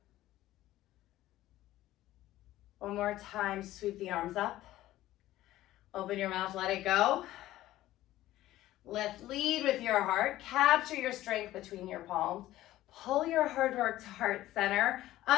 One more time, sweep the arms up. Open your mouth, let it go. Lead with your heart. Capture your strength between your palms. Pull your hard work to heart center.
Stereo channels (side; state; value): right; quieter; 15.0 dB